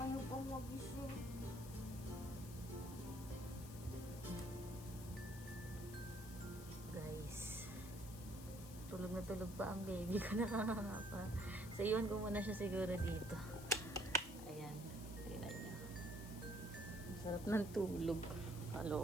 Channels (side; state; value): left; noise; hiss, 14 dB below the sound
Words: pang magising. Guys, tulog na tulog pa ang baby ko. Nakakapa. So, iwan ko muna siya siguro dito. Ayan. Tingnan niyo. Ang sarap ng tulog.